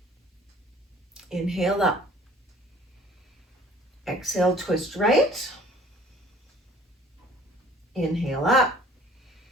Inhale up. Exhale, twist right. Inhale up.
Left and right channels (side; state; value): both; normal; correlation 0.52